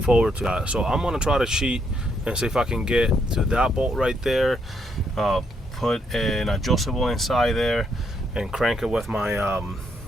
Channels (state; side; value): normal; both; correlation 0.75